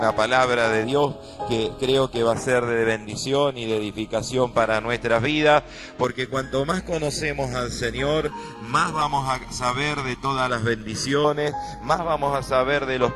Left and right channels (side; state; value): both; identical; correlation 1.00